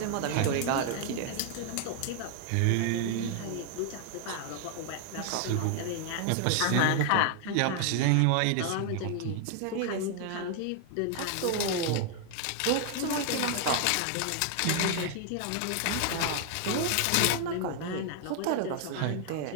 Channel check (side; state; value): both; different; correlation 0.00